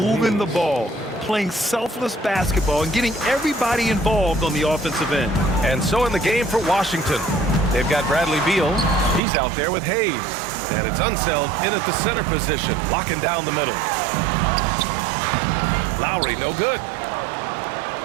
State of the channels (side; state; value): left; drops out; at 9.2 s